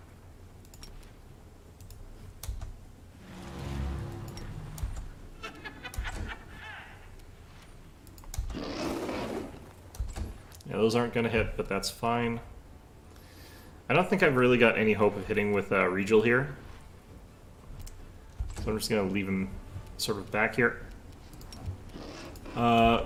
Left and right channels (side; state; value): both; identical; correlation 1.00